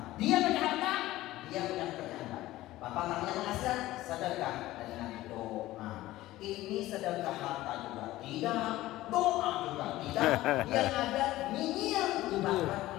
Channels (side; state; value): right; quieter; 16.4 dB